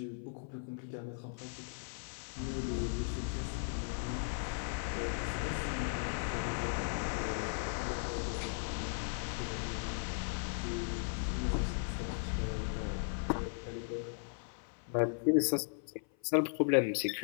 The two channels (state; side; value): silent; right; 53 dB below the other